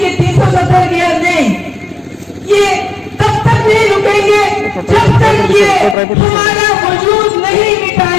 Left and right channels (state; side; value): drops out; right; at 6.0 s